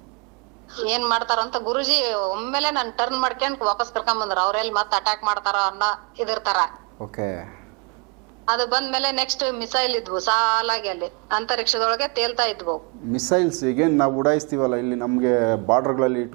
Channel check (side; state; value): left; quieter; 33.8 dB